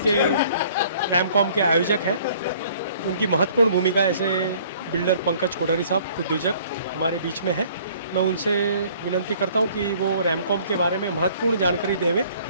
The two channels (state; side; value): inverted; both; correlation -0.56